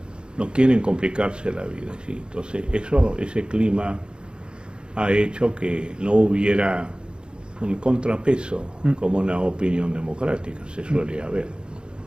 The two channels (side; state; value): left; late; 0.051 ms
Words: no quieren complicarse la vida. ¿Sí? Entonces, ese clima ha hecho que no hubiera un contrapeso como una opinión democrática se suele haber.